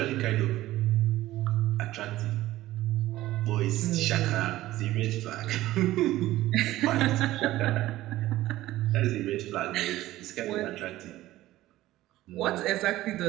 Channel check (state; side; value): quieter; left; 15.8 dB